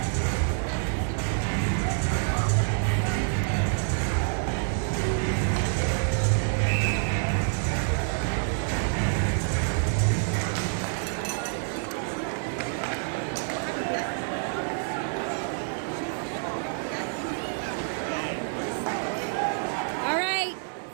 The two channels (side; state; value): left; silent; digital silence